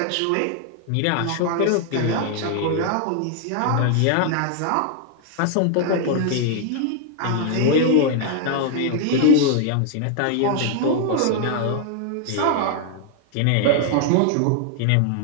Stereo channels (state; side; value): different; both; correlation 0.00